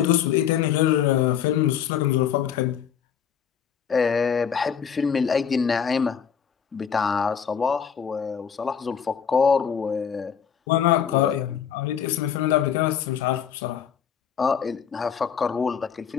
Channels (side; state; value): right; quieter; 7.8 dB